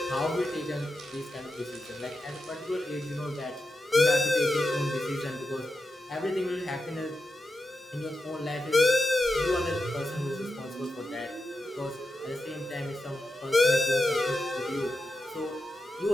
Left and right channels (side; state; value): both; normal; correlation 0.89